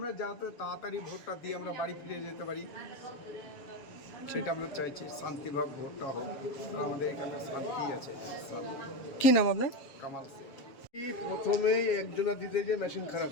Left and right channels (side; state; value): right; late; 7.2 ms